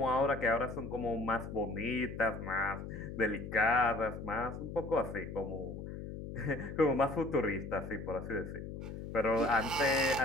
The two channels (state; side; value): noise; left; hum, 8 dB below the sound